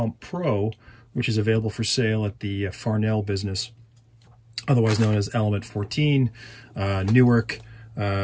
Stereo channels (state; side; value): identical; both; correlation 1.00